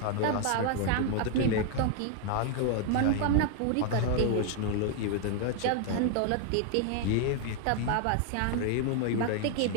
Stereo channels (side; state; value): both; different; correlation 0.00